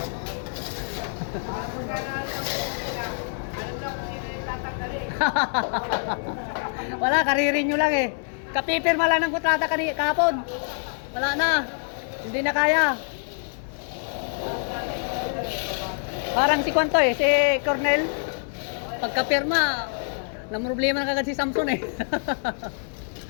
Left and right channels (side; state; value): right; silent; digital silence